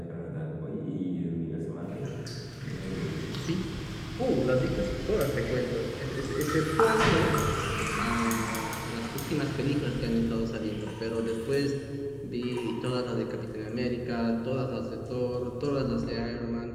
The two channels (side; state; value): both; identical; correlation 1.00